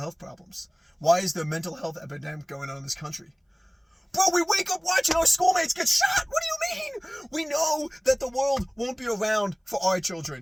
problems? Why is there a mental health epidemic going on in this country? Bro, we wake up watching our schoolmates get shot. What do you mean? We know that the world won't be around for our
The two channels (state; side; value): identical; both; correlation 1.00